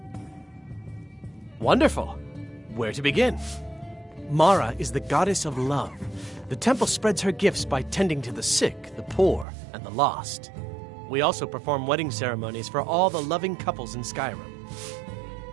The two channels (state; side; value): drops out; left; at 9.5 s